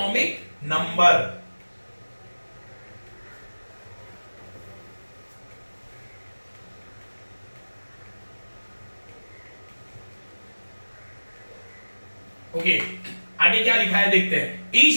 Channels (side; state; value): both; inverted; correlation -1.00